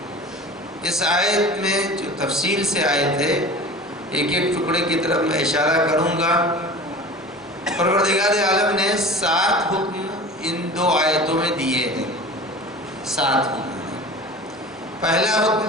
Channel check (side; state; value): both; normal; correlation 0.38